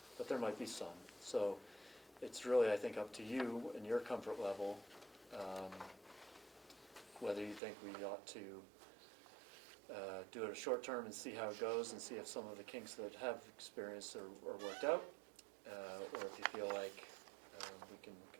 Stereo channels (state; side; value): drops out; left; at 7.6 s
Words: but there might be some. So it's really, I think, up to you and your comfort level, whether you think we ought to do it a short term and see how it goes and see if some of the kinks that have experienced are worked out, or if you feel like we can